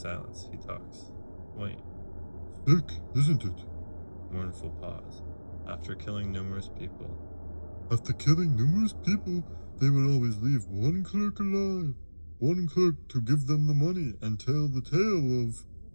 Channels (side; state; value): both; inverted; correlation -1.00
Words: he talks. Wayne. Sick, isn't it? Mournful pause. After killing numerous people. After killing numerous people, they would always leave one clerk alive. One clerk to give them the money and tell the tale of...